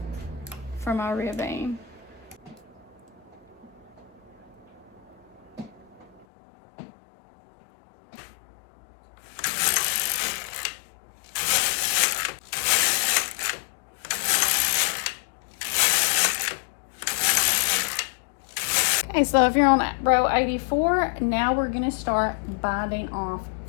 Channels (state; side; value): drops out; right; at 6.2 s